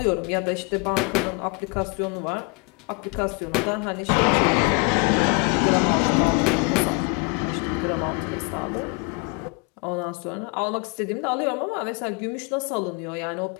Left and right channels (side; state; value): right; quieter; 31.7 dB